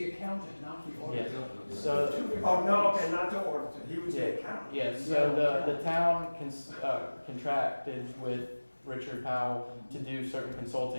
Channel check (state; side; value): inverted; both; correlation -1.00